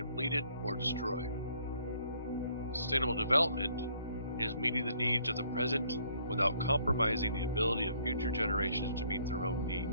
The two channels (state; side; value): inverted; both; correlation -0.64